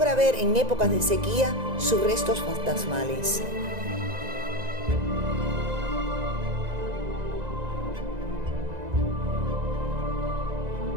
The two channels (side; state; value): left; late; 1.9 ms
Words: ver en épocas de sequía sus restos fantasmales.